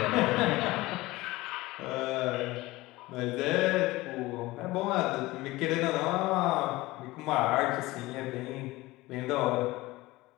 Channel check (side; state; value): right; quieter; 19.7 dB